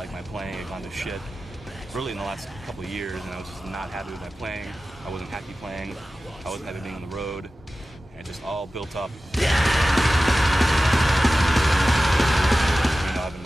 my playing had gone to shit really in the last couple of years, and I was just not happy with my playing. I wasn't happy playing. I wasn't happy being on the road. And it just all built up. You know, I've been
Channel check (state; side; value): normal; both; correlation 0.95